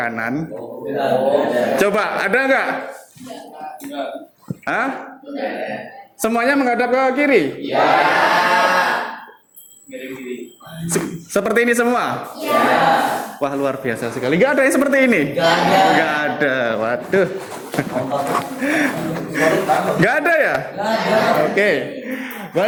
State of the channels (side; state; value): both; identical; correlation 1.00